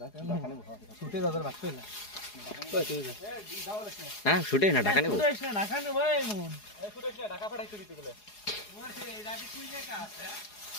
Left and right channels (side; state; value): right; late; 4.8 ms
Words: হ্যাঁ শুটে না ঢাকা নেব।